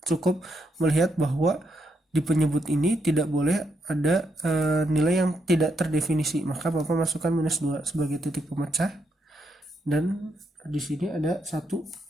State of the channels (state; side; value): normal; both; correlation 0.79